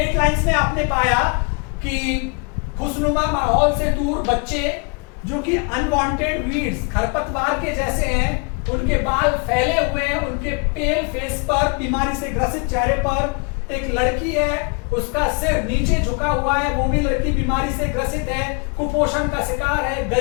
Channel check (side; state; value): right; quieter; 33.8 dB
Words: लाइन्स में आपने पाया कि खुशनुमा माहौल से दूर बच्चे जो कि अनवांटेड वीड्स, खरपतवार के जैसे हैं, उनके बाल फैले हुए हैं, उनके पेल फेस पर, बीमारी से ग्रसित चेहरे पर। एक लड़की है, उसका सिर नीचे झुका हुआ है, वो भी लड़की बीमारी से ग्रसित है, कुपोषण का शिकार है,